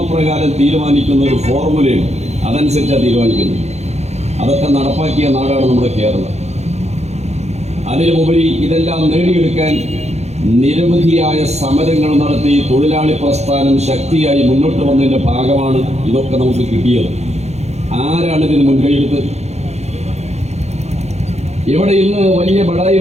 തീരുമാനിക്കുന്ന ഒരു ഫോർമുലയുണ്ട്. അതനുസരിച്ചാണ് തീരുമാനിക്കുന്നത്. അതൊക്കെ നടപ്പാക്കിയ നാടാണ് നമ്മുടെ കേരളം. അതിനുമുപരി ഇതെല്ലാം നേടിയെടുക്കാൻ നിരവധിയായ സമരങ്ങൾ നടത്തി തൊഴിലാളി പ്രസ്ഥാനം ശക്തിയായി മുന്നോട്ട് വന്നതിൻ്റെ ഭാഗമാണ് ഇതൊക്കെ നമുക്ക് കിട്ടിയത്. ആരാണ് ഇതിന് മുൻകൈയെടുത്ത്? ഇവിടെ ഇന്ന് വലിയ ബടായി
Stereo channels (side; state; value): left; late; 0.32 ms